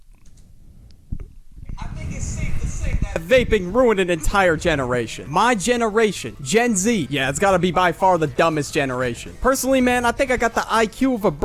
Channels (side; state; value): both; identical; correlation 1.00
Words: I think it's safe to say that vaping ruined an entire generation. My generation, Gen Z, yeah, it's gotta be by far the dumbest generation. Personally, man, I think I got the IQ of a